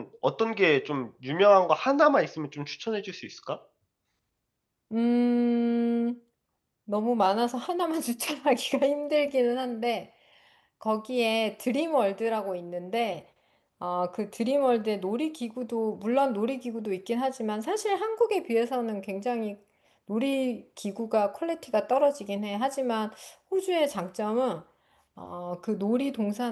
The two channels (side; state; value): both; identical; correlation 1.00